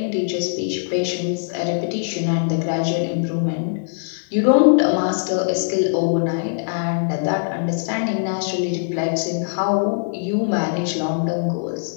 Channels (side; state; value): right; silent; digital silence